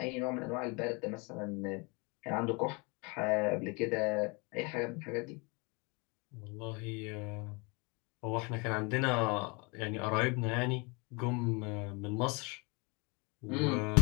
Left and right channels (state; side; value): quieter; right; 29.6 dB